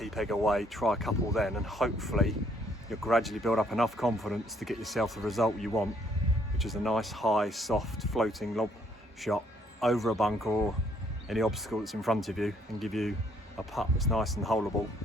away, try a couple then, and hopefully you'll gradually build up enough confidence to get yourself the result you want, which is a nice, high, soft, floating lob shot over a bunker or any obstacle that's in front of you, and give you a putt that's nice and holeable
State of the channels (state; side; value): normal; both; correlation 0.67